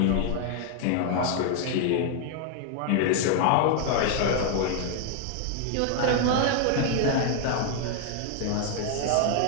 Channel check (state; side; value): different; both; correlation 0.00